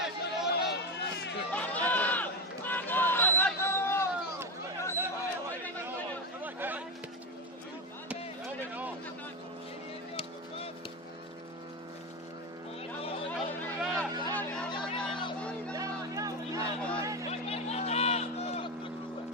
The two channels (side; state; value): both; normal; correlation 0.15